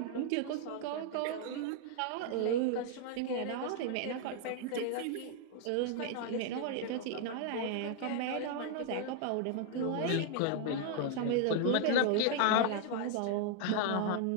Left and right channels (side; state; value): both; different; correlation 0.00